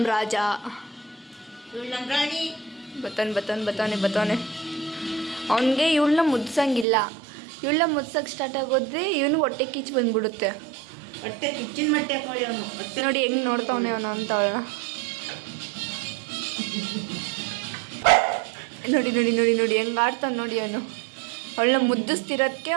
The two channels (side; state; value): left; drops out; at 6.9 s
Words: ರಾಜ ಬತ್ತಾನೆ. ಅವನಿಗೆ ಇವಳನ್ನ ಮುದ್ಸಂಗಿಲ್ಲ. ಇವಳನ್ನ ಮುದ್ಸಕ್ಕೆ ಸ್ಟಾರ್ಟ್ ಆಗೋದ್ರೆ ಇವನು ಹೊಟ್ಟೆ ಕಿಚ್ಚು ಬಂದ್ಬಿಡುತ್ತೆ. ಹೊಟ್ಟೆ ಕಿಚ್ಚಿನ ಮಟ್ಟೆ ಅವನು. ನೋಡಿ ಹೆಂಗೆ ನೋಡ್ತಾವನೆ ಅವನು ಅಂತ ಅವಳ. ನೋಡಿ ನೋಡಿ ನೋಡಿ ನೋಡಿ ಹೆಂಗೆ ಆಡ್ತಾನೆ ನೋಡಿ ಅವನು. ಅವಳನ್ನ ಮುದ್ದಿಸ್ತಿರೋದಕ್ಕೆ